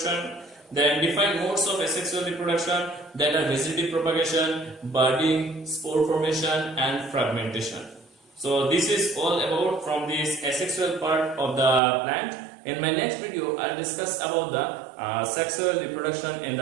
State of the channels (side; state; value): left; drops out; at 11.8 s